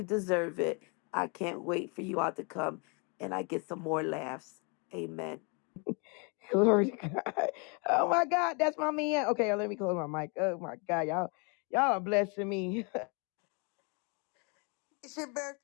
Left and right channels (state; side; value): quieter; right; 34.3 dB